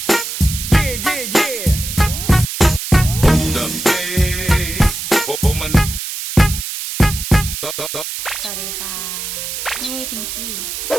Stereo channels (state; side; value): noise; right; hiss, 6 dB below the sound